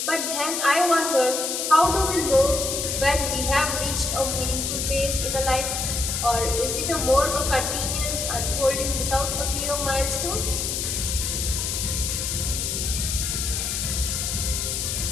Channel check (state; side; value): noise; left; hiss, 1 dB below the sound